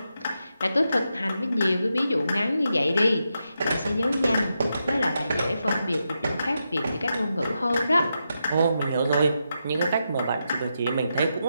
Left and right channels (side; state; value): both; inverted; correlation -0.85